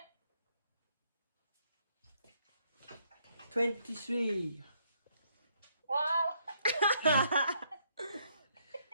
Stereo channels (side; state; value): both; inverted; correlation -0.71